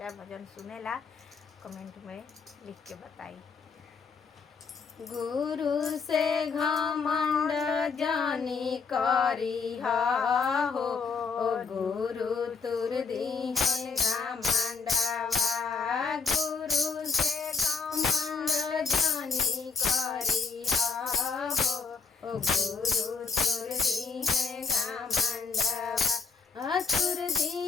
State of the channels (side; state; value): right; quieter; 5.1 dB